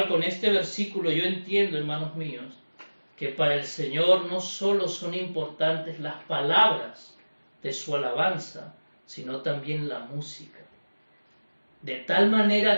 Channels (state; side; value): inverted; both; correlation -1.00